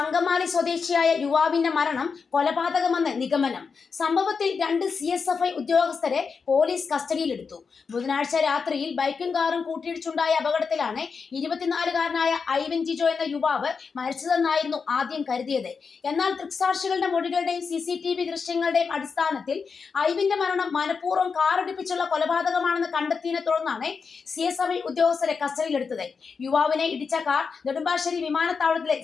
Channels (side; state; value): right; quieter; 5.4 dB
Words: സ്വദേശിയായ യുവാവിന്റെ മരണം കൊലപാതകമെന്ന് നിഗമനം. സംഭവത്തിൽ 2 CSFI ഉദ്യോഗസ്ഥരെ പോലീസ് കസ്റ്റഡിയിലെടുത്തു. ബുധനാഴ്ച രാത്രിയിൽ ബൈക്കും കാറും കൂട്ടിയിടിച്ചുണ്ടായ അപകടത്തിലാണ് 24-കാരനായ ഐവൻ ജിജോ എന്ന യുവാവ് മരിച്ചതെന്നായിരുന്നു ആദ്യം കരുതിയത്. എന്നാൽ ദൃക്സാക്ഷികളുടെ മൊഴികളുടെയും CCTV ദൃശ്യങ്ങളുടെയും അടിസ്ഥാനത്തിൽ ഐവിന്റെ മരണം മനഃപൂർവ്വം കാറിടിപ്പിച്ചുള്ള കൊലപാതകമാണെന്ന് കണ്ടെത്തിയതിനെ തുടർന്നാണ് CSFI ഉദ്യോഗസ്ഥരെ കസ്റ്റഡിയിലെടുത്തത്. യുവാവിനെ ഇടിച്ച കാർ നെടുമ്പാശ്ശേരി വിമാനത്താവളത്തിലെ